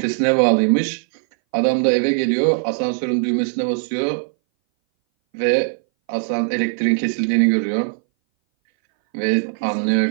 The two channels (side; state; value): left; silent; 61 dB below the other